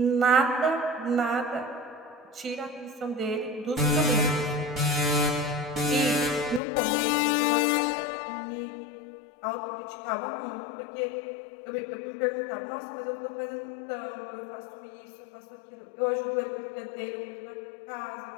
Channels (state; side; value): drops out; right; at 6.6 s